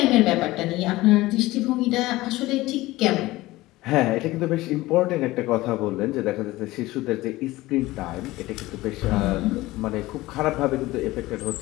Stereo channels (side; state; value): right; quieter; 18.6 dB